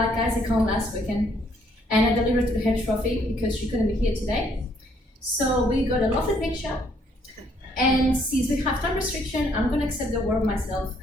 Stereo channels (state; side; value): normal; both; correlation 0.67